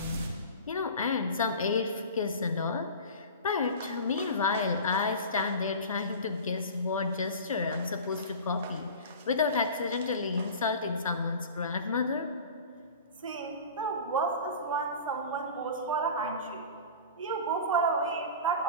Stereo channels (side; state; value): both; inverted; correlation -0.36